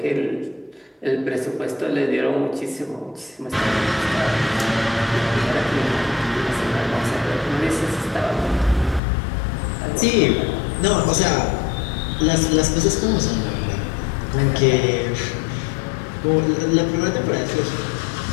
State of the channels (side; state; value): right; drops out; at 9.0 s